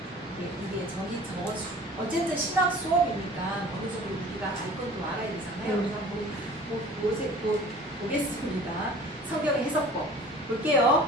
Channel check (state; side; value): normal; both; correlation 0.46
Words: 이게 어쨌든 신학 수업이니까 어느 정도 우리가 알 것도 알아야 되잖아요. 그래서 보겠습니다. 성경의 해석법